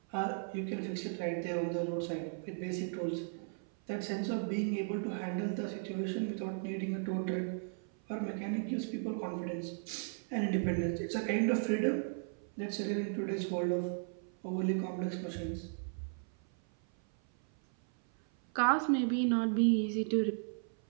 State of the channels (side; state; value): left; silent; 54 dB below the other